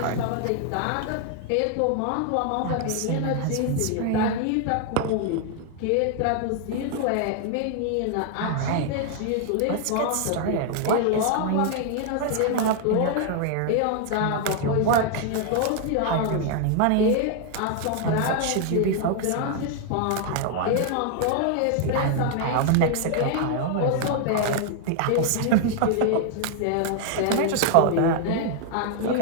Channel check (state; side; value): different; both; correlation 0.00